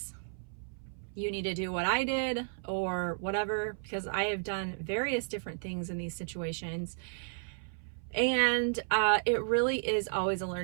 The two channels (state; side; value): silent; left; 56 dB below the other